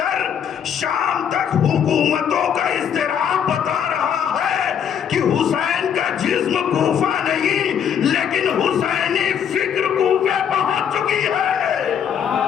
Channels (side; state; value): right; quieter; 8.4 dB